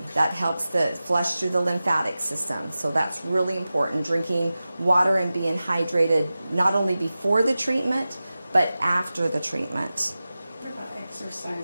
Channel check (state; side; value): inverted; both; correlation -0.95